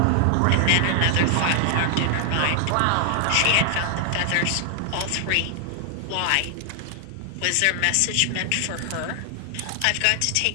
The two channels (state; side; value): different; both; correlation 0.00